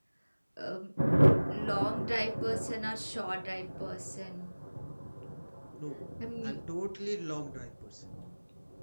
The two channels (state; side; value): inverted; both; correlation -1.00